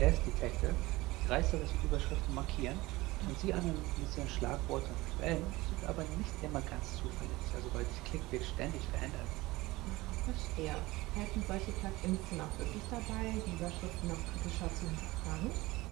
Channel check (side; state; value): left; quieter; 20.1 dB